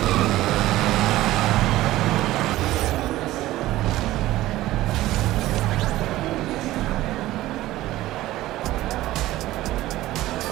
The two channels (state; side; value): quieter; left; 16.1 dB